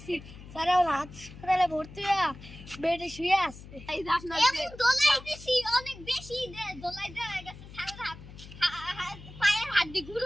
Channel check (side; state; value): left; noise; hum, 16 dB below the sound